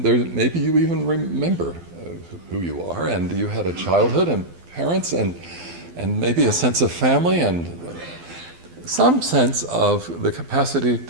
maybe you even remember who you are, and you had a childhood and parents and maybe a sense of family and some sense of the capacity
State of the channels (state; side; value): late; left; 12 ms